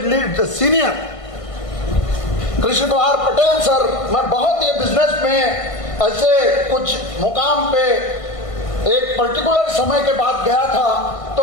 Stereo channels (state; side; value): late; right; 1.5 ms